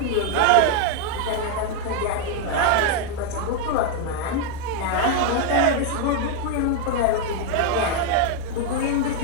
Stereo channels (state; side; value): different; both; correlation 0.01